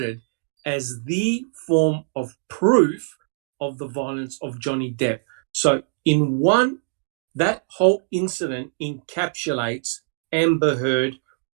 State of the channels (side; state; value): left; silent; digital silence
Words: as the form of proof of the violence of Johnny Depp. So in one, that whole incident encapsulates Amber Heard